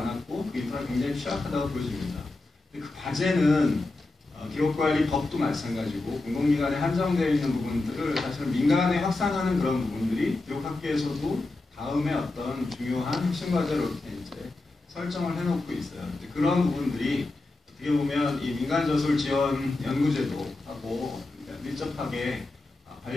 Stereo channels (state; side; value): quieter; right; 3.1 dB